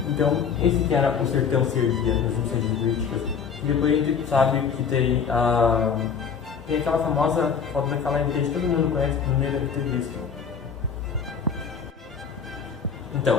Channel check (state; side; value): quieter; right; 6.5 dB